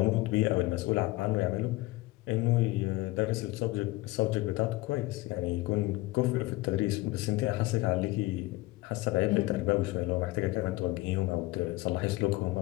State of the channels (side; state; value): right; quieter; 20.0 dB